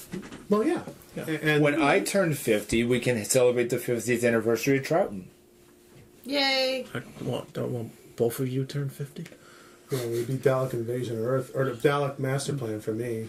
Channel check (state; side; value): identical; both; correlation 1.00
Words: Well, yeah. Yeah. And When I turn 50, we can celebrate the 50th anniversary of Troughton. Yay! Don't want both of you turn 50? it would be Dalek Invasion of Earth, or the Dalek Master Plan for me.